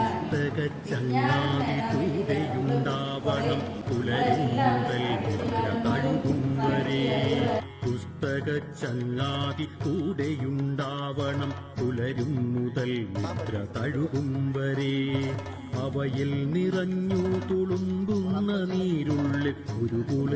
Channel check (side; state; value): both; identical; correlation 1.00